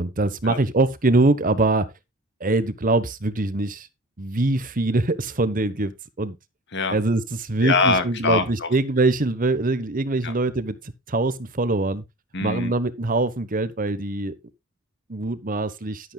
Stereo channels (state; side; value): normal; both; correlation 0.39